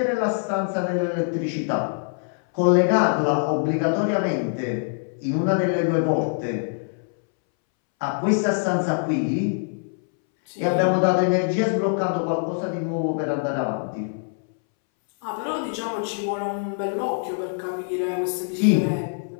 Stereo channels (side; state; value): right; silent; 63 dB below the other